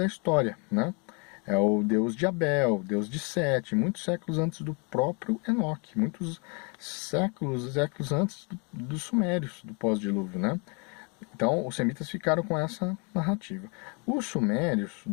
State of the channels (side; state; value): right; quieter; 33.6 dB